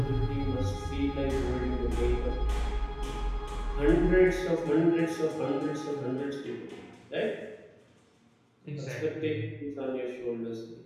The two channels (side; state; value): both; identical; correlation 1.00